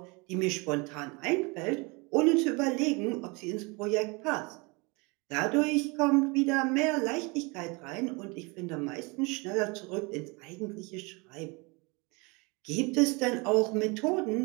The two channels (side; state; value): left; quieter; 28.2 dB